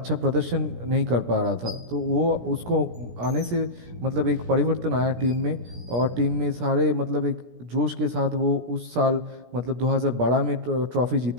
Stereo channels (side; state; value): left; late; 17 ms